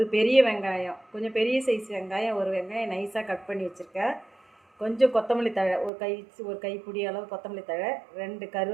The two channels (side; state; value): left; drops out; at 5.9 s